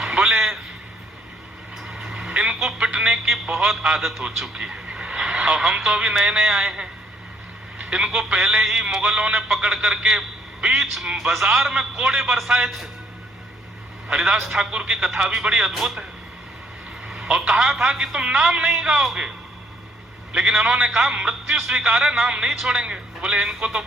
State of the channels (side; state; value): both; normal; correlation 0.67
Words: बोले इनको पिटने की बहुत आदत हो चुकी है और हम तो अभी नए नए आए हैं। इनको पहले ही मुगलों ने पकड़ करके बीच बाजार में कोड़े बरसाए थे। हरिदास ठाकुर की कथा भी बड़ी अद्भुत है। और कहा था कि तुम नाम नहीं गाओगे, लेकिन इन्होंने कहा मृत्यु स्वीकार है, नाम नहीं छोड़ेंगे। बोले इनको तो